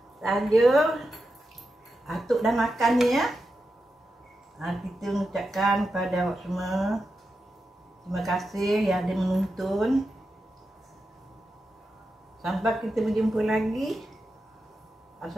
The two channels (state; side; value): normal; both; correlation 0.89